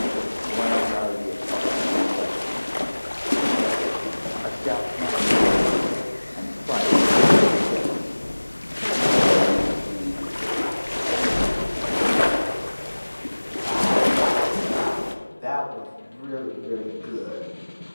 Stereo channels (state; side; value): inverted; both; correlation -1.00